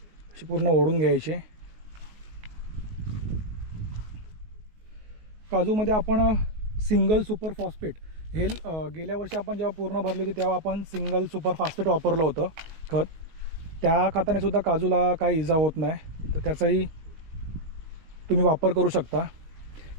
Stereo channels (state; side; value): late; left; 19 ms